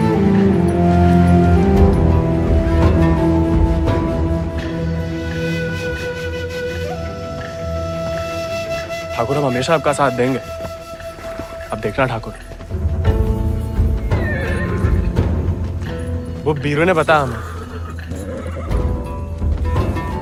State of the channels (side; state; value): both; identical; correlation 1.00